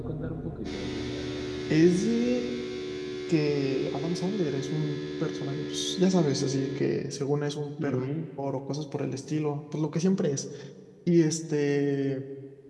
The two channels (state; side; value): identical; both; correlation 1.00